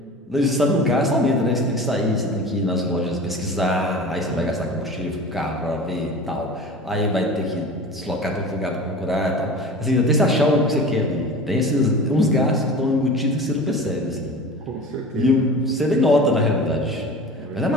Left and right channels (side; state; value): both; normal; correlation 0.36